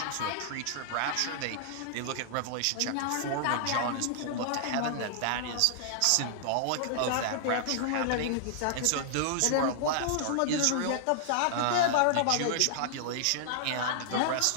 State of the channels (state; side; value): different; both; correlation -0.01